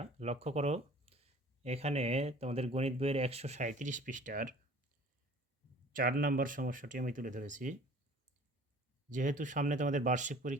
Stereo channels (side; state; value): both; normal; correlation 0.48